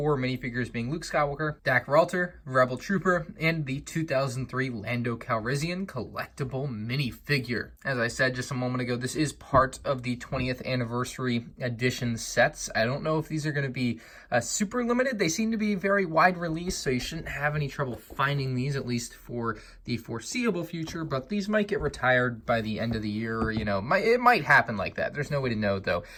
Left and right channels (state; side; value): identical; both; correlation 1.00